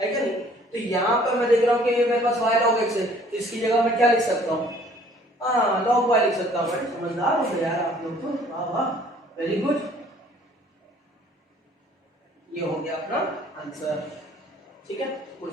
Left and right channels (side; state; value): both; normal; correlation 0.57